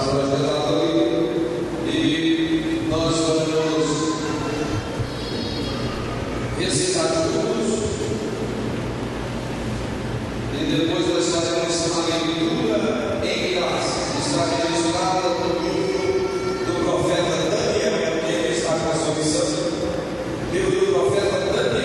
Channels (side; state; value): both; identical; correlation 1.00